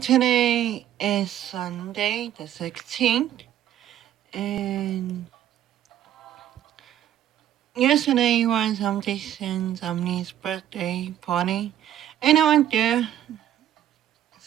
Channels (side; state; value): left; quieter; 11.5 dB